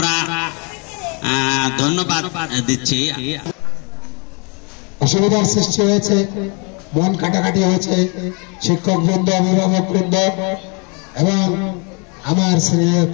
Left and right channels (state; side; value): quieter; right; 33.5 dB